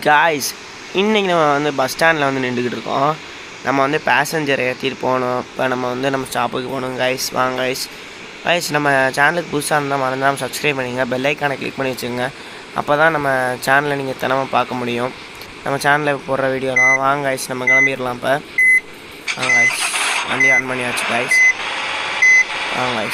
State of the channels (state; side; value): identical; both; correlation 1.00